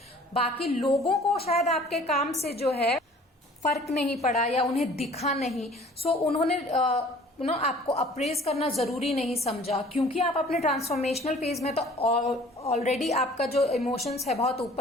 बाकी लोगों को शायद आपके काम से जो है फर्क नहीं पड़ा, या उन्हें दिखा नहीं। सो उन्होंने आपको अप्रेज करना जरूरी नहीं समझा, क्योंकि आप अपने ट्रांसफॉर्मेशनल फेज में तो ऑलरेडी आपका जो इमोशंस है बहुत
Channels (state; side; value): normal; both; correlation 0.51